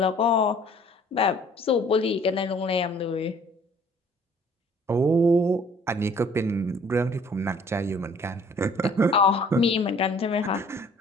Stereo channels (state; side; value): normal; both; correlation 0.55